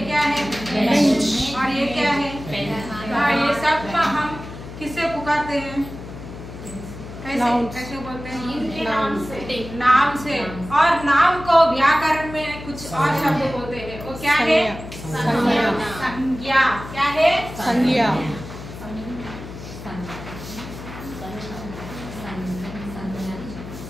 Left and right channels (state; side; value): noise; left; hum, 12 dB below the sound